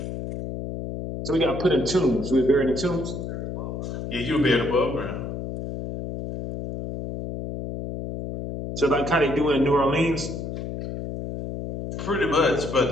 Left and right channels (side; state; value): left; noise; hum, 6 dB below the sound